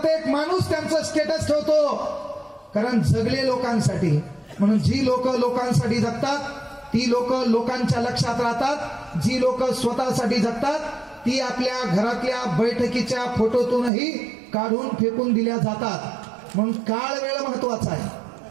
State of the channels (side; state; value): left; drops out; at 13.9 s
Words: माणूस त्यांचं स्टेटस ठेवतो, कारण जगले लोकांसाठी. म्हणून जी लोक लोकांसाठी जगतात ती लोक लोकांच्या लक्षात राहतात. जी लोक स्वतःसाठी जगतात ती आपल्या घरातल्या बैठकीच्या फोटोतूनही काढून फेकून दिल्या जातात. म्हणून काळ वेळ महत्वाचा आहे,